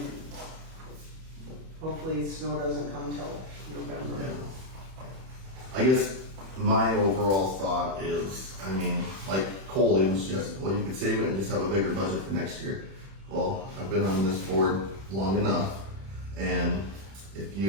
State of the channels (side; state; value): left; late; 31 ms